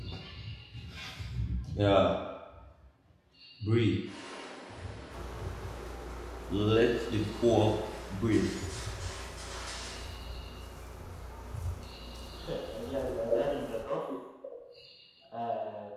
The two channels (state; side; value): identical; both; correlation 1.00